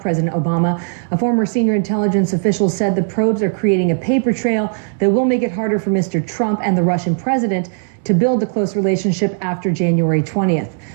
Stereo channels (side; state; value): left; silent; digital silence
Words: Obama, a former senior intelligence official said the probes are creating a paper trail that will make it harder for Mr. Trump and the Russian president to build a close relationship after January 20th.